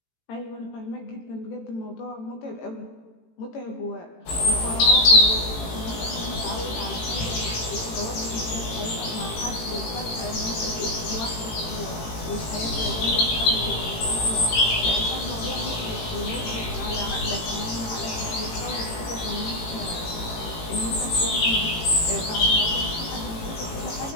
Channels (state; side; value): late; right; 18 ms